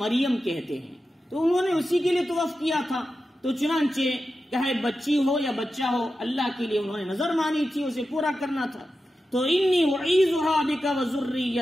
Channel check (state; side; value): normal; both; correlation 0.91